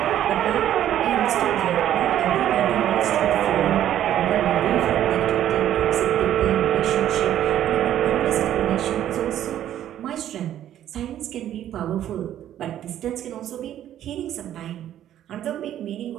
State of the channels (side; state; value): left; quieter; 11.5 dB